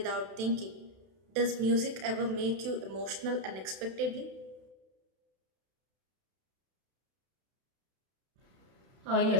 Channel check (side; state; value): left; late; 32 ms